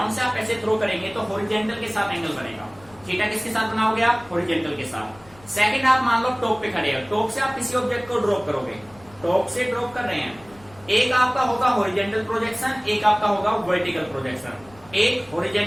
से आप ऐसे थ्रो करेंगे तो हॉरिजॉन्टल के साथ एंगल बनेगा। थीटा किसके साथ बनाओगे आप? हॉरिजॉन्टल के साथ। सेकंड आप मान लो टॉप पे खड़े हो, टॉप से आप किसी ऑब्जेक्ट को ड्रॉप करोगे, टॉप से ड्रॉप कर रहे हैं, एक आपका होगा हॉरिजॉन्टल प्रोजेक्शन, एक आपका होगा वर्टिकल प्रोजेक्शन। एक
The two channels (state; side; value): noise; left; rumble, 25 dB below the sound